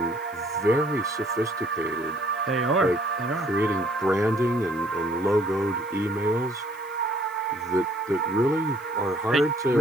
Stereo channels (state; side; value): noise; left; hiss, 24 dB below the sound